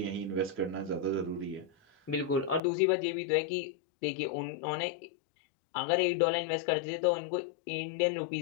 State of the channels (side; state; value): right; drops out; at 2.6 s